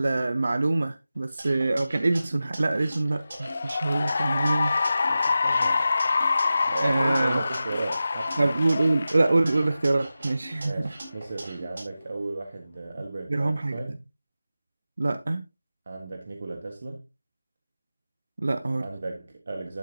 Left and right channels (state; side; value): inverted; both; correlation -0.94